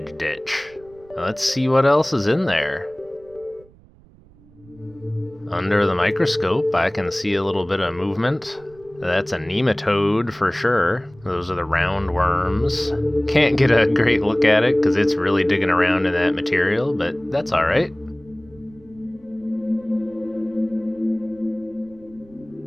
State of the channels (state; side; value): noise; right; rumble, 26 dB below the sound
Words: ditch. Let's see what else is in there. Under the microscope, I can see a little bit of movement. That's a nematode for sure. Those are the round worms. Can't get a great look at it because it's really digging around in that material, but that's alright.